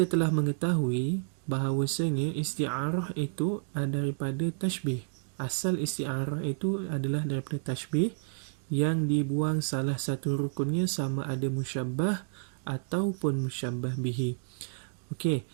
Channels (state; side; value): silent; left; digital silence